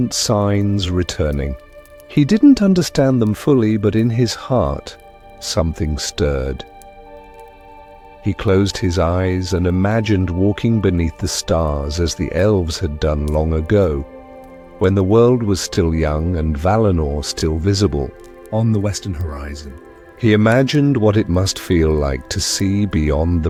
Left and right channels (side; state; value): both; identical; correlation 1.00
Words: signs returning. He didn't understand them fully, but in his heart something stirred. He closed his eyes and imagined walking beneath the stars as the elves had done long ago, when the world was still young and Valinor still visible on the western horizon. He imagined what it must feel like to see beyond the